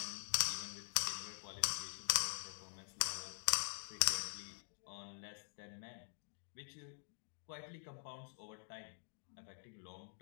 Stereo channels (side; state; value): right; silent; digital silence